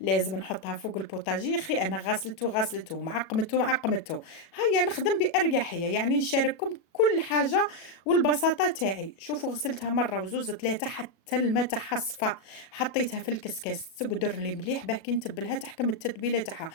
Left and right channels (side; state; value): right; late; 37 ms